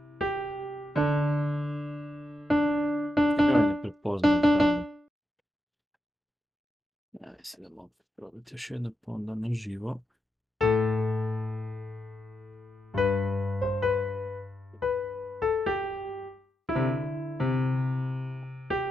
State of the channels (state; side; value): normal; both; correlation 0.87